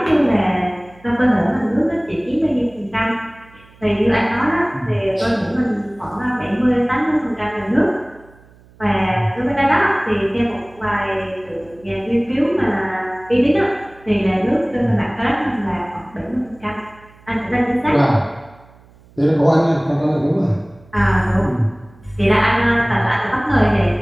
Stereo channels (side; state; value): right; noise; hum, 27 dB below the sound